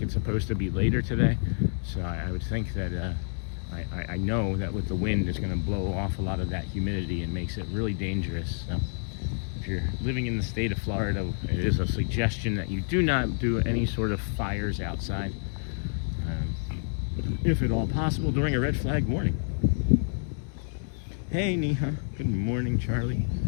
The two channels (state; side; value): silent; right; digital silence